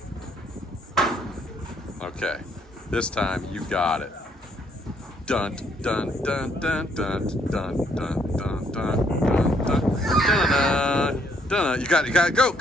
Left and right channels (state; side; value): normal; both; correlation 0.69